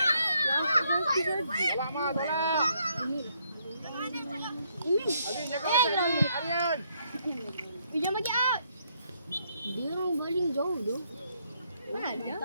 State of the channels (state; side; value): inverted; both; correlation -0.73